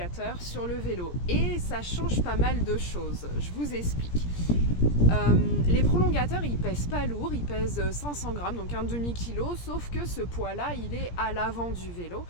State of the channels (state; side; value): late; right; 17 ms